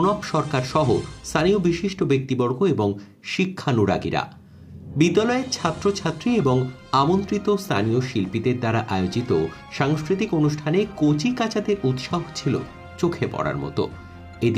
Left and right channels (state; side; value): identical; both; correlation 1.00